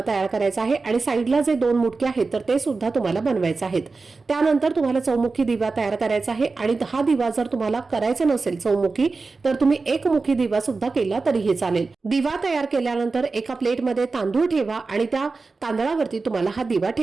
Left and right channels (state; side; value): quieter; left; 4.0 dB